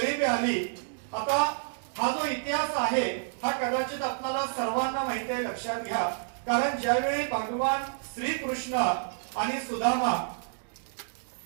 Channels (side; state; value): left; silent; digital silence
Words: आली। आता हा जो इतिहास आहे हा कदाचित आपल्याला सर्वांना माहिती आहे, लक्षात घ्या। कारण ज्यावेळी भगवान श्रीकृष्ण आणि सुदामा